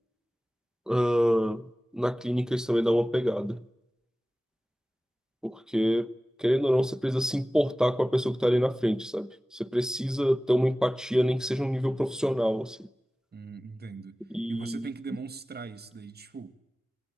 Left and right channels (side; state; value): both; normal; correlation 0.97